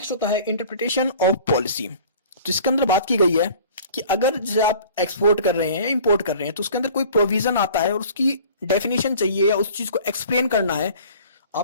होता है इंटरप्रिटेशन ऑफ पॉलिसी। तो इसके अंदर बात की गई है कि अगर जैसे आप एक्सपोर्ट कर रहे हैं या इंपोर्ट कर रहे हैं तो उसके अंदर कोई प्रोविजन आता है और उसकी डेफिनेशन चाहिए या उस चीज को एक्सप्लेन करना है,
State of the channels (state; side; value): inverted; both; correlation -0.46